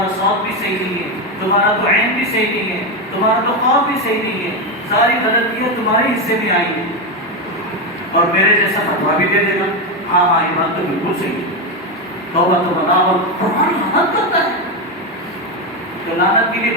صوت بھی صحیح نہیں ہے، تمہارا تو عین بھی صحیح نہیں ہے، تمہارا تو خواب بھی صحیح نہیں ہے، ساری غلطیاں تمہارے حصے میں آئی ہیں، اور میرے جیسا فتویٰ بھی دے دے گا، ہاں ہاں یہ بات تو بالکل صحیح ہے، توبہ تو بنا، اور قرآن لعنت کرتا ہے۔ تو لعنت کے لیے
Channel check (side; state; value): both; normal; correlation 0.11